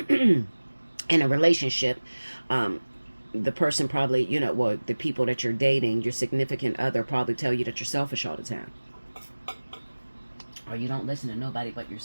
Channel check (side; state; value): both; inverted; correlation -1.00